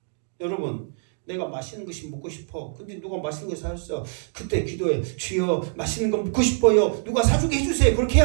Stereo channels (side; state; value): left; silent; digital silence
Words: 여러분 내가 맛있는 것이 먹고 싶어. 근데 누가 맛있는 거 사줬어. 그때 기도해. 주여 맛있는 거 먹고 싶어요. 누가 사주게 해주세요. 그렇게